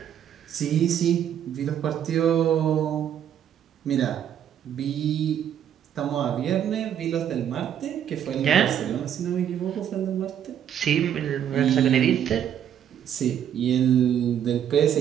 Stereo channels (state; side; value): quieter; left; 9.7 dB